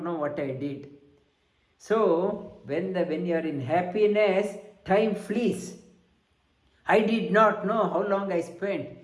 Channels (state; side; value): identical; both; correlation 1.00